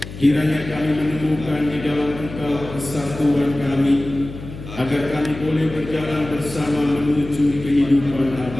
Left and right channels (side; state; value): left; noise; hum, 12 dB below the sound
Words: Kiranya kami menemukan di dalam Engkau kesatuan kami, agar kami boleh berjalan bersama menuju kehidupan